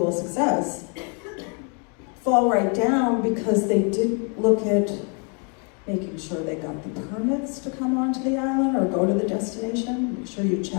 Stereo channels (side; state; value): right; quieter; 38.0 dB